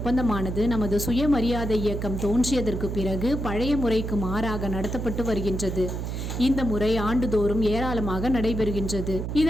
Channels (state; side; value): noise; right; hum, 4 dB below the sound